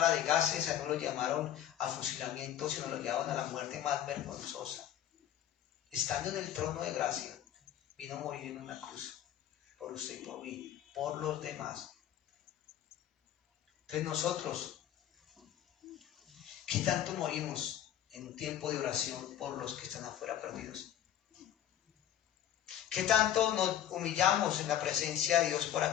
de gases, a él no lo llamaron a fusilamiento, sino lo llevaron a la muerte más vergonzosa. Estando en el trono de gracia, vino a morir en una cruz, por usted y por mí, por los demás. Entonces nosotros, ¿qué tanto morimos en un tiempo de oración por los que están afuera perdidos? ¿Qué tanto nos humillamos en la presencia de Dios por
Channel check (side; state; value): right; quieter; 11.1 dB